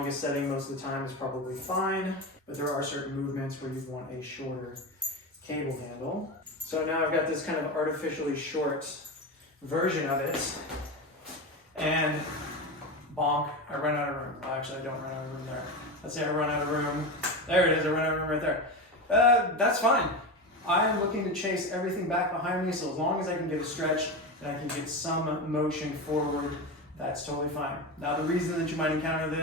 setting most of the time is probably fine, but there are certain movements where you'd want a shorter cable handle. So now I've got this kind of artificially short version of it, and bonk, I run out of room. Well, actually, I don't run out of room there. Let's say I run out of room. There it is, I run out of room right there. That's fine. I am looking to chase everything back behind me, so as long as I can get a stretch and I can get some motion forward, that's totally fine. Now, the reason that you might encounter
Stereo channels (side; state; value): both; normal; correlation 0.21